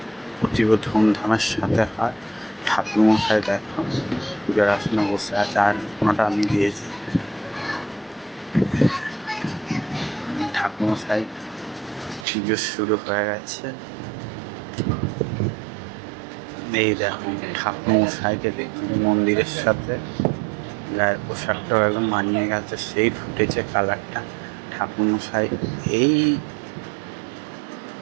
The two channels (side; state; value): left; drops out; at 12.2 s